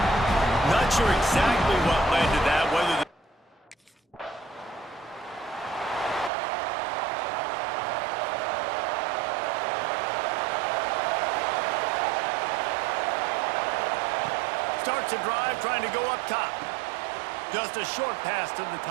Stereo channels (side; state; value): left; drops out; at 6.3 s